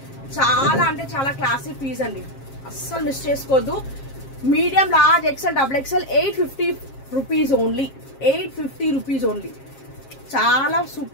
చాలా అంటే చాలా క్లాసిక్ పీస్ అండి, అస్సలు మిస్ చేసుకోవద్దు. Medium large XL double XL 850 rupees only. 850 rupees only. చాలా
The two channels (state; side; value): late; right; 7.4 ms